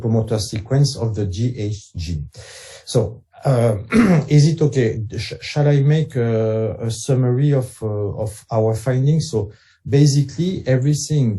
sequence of the GH gene. So, is it okay? Shall I make a summary of our findings? So basically,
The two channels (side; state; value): both; identical; correlation 1.00